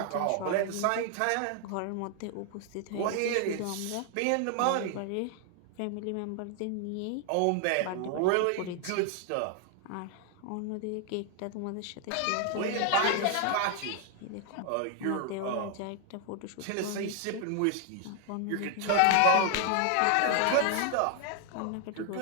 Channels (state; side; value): different; both; correlation 0.00